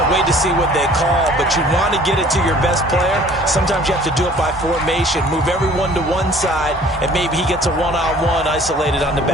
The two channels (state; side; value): normal; both; correlation 0.52